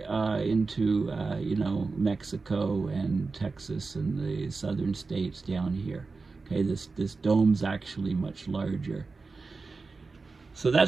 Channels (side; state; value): left; quieter; 4.1 dB